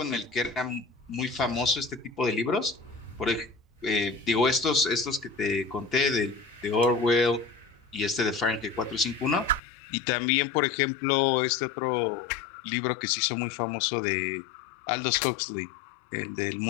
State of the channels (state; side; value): drops out; right; at 9.6 s